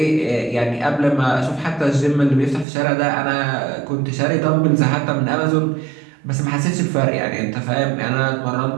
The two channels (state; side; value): drops out; left; at 2.7 s